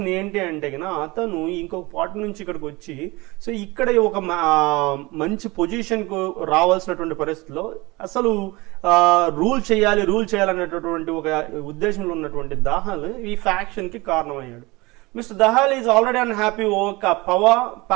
ఏంటి అంటే అతను ఇంకొక పార్టీ నుంచి ఇక్కడికి వచ్చి సో ఇక్కడ ఒక మంచి పొజిషన్కు రావాల్సినటువంటి పరిస్థితిలో అసలు రూల్ చేయాలనేటటువంటి ఒక ఉద్దేశంలో ఉన్నటువంటి దహాల్ ఈ ఫ్యాక్షన్కి కారణమయ్యాడు. Mr. Dahal is already unhappy over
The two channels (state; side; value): quieter; left; 23.0 dB